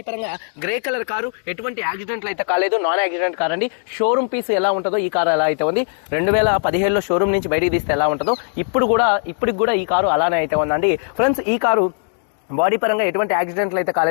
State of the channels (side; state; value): right; silent; digital silence